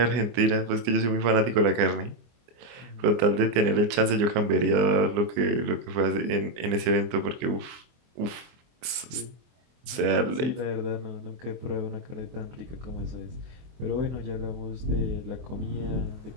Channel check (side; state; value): left; late; 24 ms